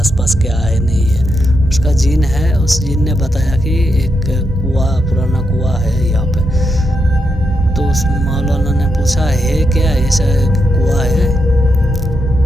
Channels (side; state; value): both; normal; correlation 0.83